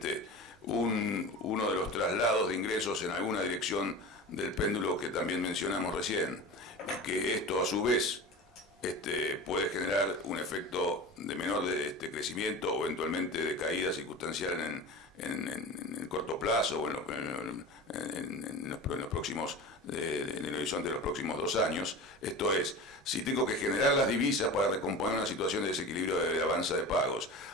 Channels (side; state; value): both; normal; correlation 0.32